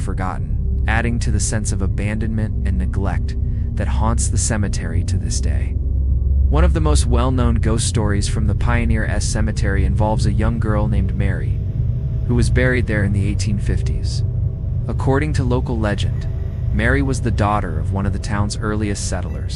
adding to the sense of abandonment and neglect that haunts the cemetery to this day. One of the most well-known ghost stories from the Pioneer Cemetery involves a young girl named Mary, who was buried there in the 1850s. According to local legend, Mary was the daughter of one of the town's earliest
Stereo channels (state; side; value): identical; both; correlation 1.00